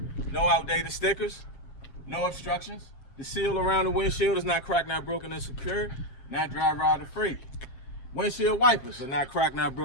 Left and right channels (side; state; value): right; late; 7.2 ms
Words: No outdated stickers, no obstructions. The seal around the windshield is not cracked, not broken, and secure. Not dry rotted free. Windshield wipers are not cracked, not